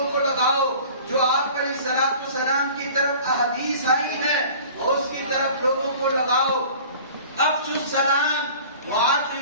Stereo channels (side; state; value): both; inverted; correlation -0.44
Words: کو لگاؤ، جو آپ علیہ الصلوۃ والسلام کی طرف احادیث آئی ہے اس کی طرف لوگوں کو لگاؤ۔ افشوا السلام